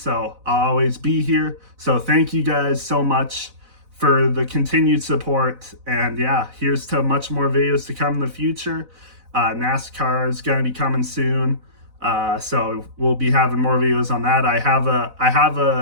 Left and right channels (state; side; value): late; left; 4.0 ms